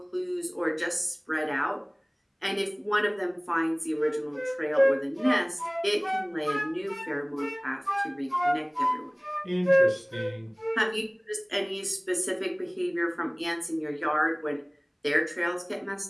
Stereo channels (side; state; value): both; identical; correlation 1.00